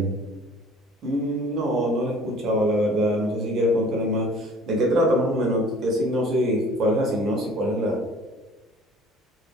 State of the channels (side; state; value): both; normal; correlation 0.50